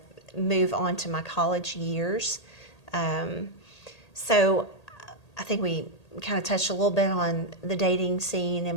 move on to my college years. So I think we kind of touched a little bit on the dating scene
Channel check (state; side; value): late; right; 1.8 ms